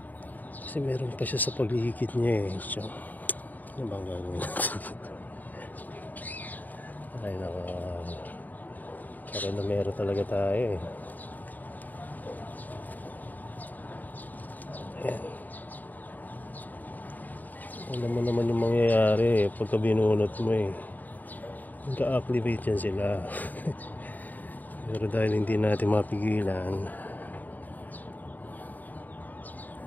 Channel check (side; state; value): right; late; 0.084 ms